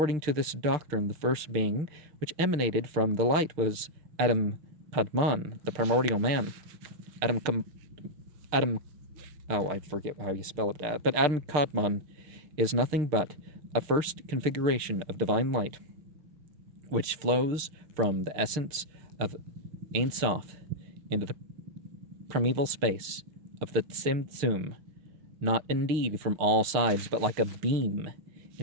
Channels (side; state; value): left; late; 6.6 ms